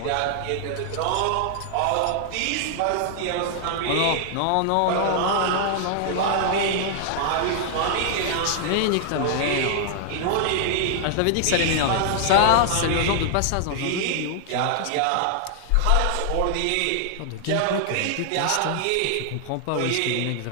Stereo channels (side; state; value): both; different; correlation 0.00